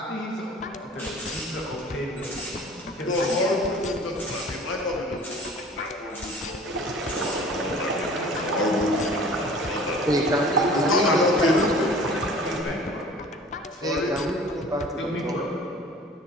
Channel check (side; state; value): both; normal; correlation 0.46